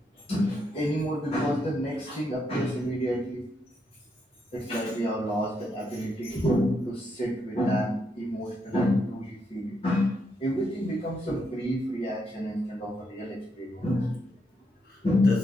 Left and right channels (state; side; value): normal; both; correlation 0.79